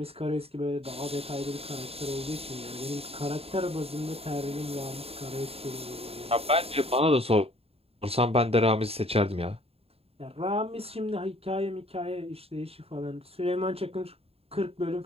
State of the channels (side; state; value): left; late; 0.28 ms